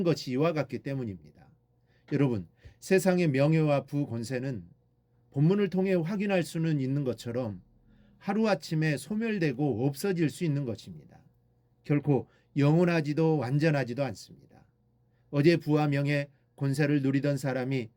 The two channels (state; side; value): identical; both; correlation 1.00